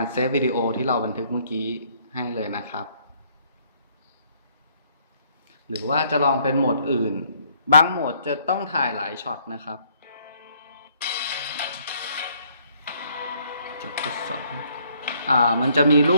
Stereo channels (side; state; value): both; inverted; correlation -0.65